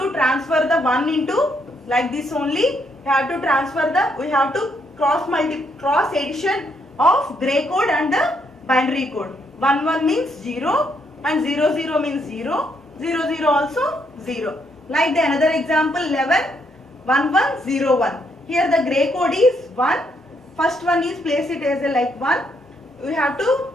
transfer the 1 into like this only. We have to transfer we have to cross addition of gray code and the binary code. 11 means 0 and 00 means 0. 00 also 0. Like the another example 111101. Here the gray code is 1. First one is place it as a like 1. We have to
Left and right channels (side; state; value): both; normal; correlation 0.74